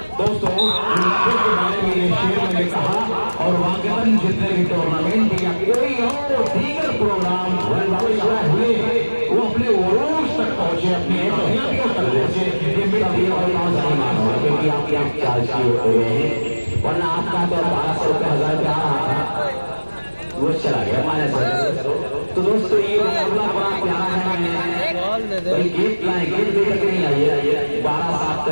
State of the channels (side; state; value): both; inverted; correlation -1.00